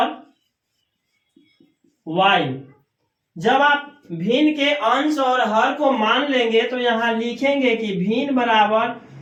y। जब आप भिन्न के अंश और हर को मान लेंगे तो यहाँ लिखेंगे कि भिन्न बराबर,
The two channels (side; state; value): both; identical; correlation 1.00